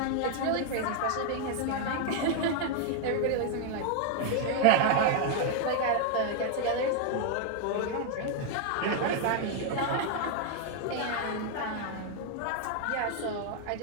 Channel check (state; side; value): different; both; correlation 0.00